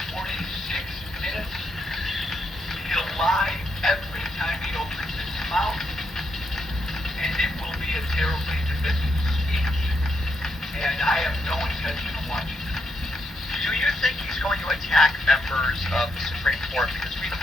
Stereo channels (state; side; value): normal; both; correlation 0.80